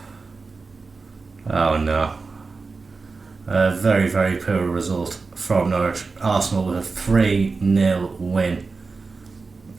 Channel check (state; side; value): quieter; left; 4.2 dB